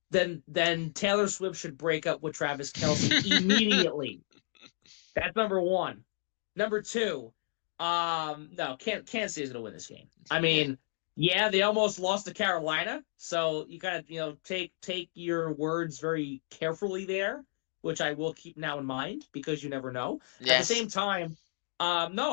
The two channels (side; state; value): right; silent; digital silence